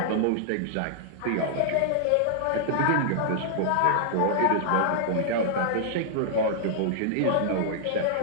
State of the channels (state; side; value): different; both; correlation -0.01